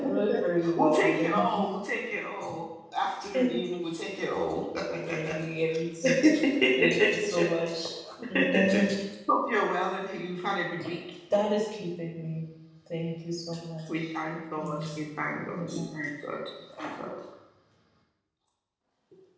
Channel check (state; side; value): identical; both; correlation 1.00